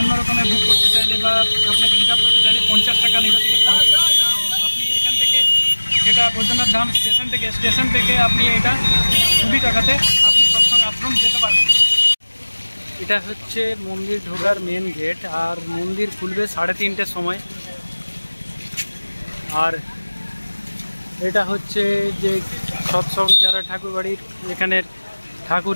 রকমের বুক করতে চাইলে বা আপনাকে রিজার্ভ করতে চাইলে 50 টাকা নেবে থেকে। তো আপনি এখান থেকে যেটা বৈদ্যনাথ ধাম স্টেশন থেকে আপনি এটা 20 টাকাতে আপনি সৎসং আশ্রম যেতে পারবেন। এটা হচ্ছে মন্দির ঢোকার মেন গেট, আর মন্দির খুলবে 3:30টার সময়। আর এটা হচ্ছে যে সৎসং যারা ঠাকুরবাড়ির এখানের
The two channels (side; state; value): both; inverted; correlation -1.00